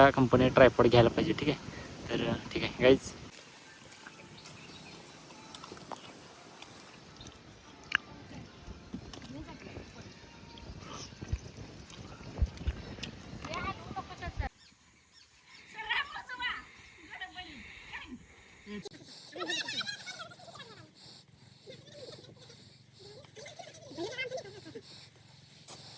कंपनी ट्रायपॉड घ्यायला पाहिजे ठीक आहे. तर ठीक आहे गाईज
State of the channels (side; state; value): both; identical; correlation 1.00